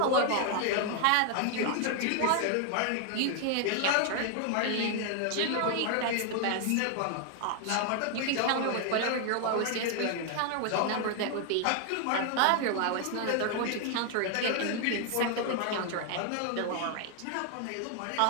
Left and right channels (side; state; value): both; different; correlation 0.00